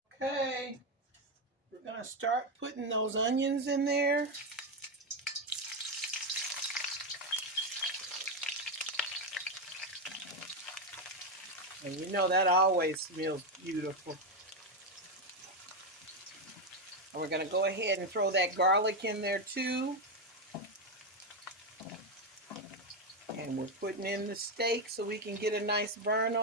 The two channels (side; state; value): both; normal; correlation 0.08